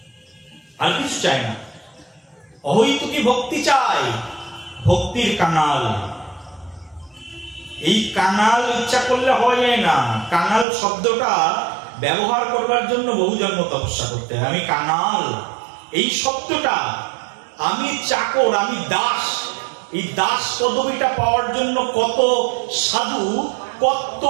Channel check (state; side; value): drops out; left; at 10.7 s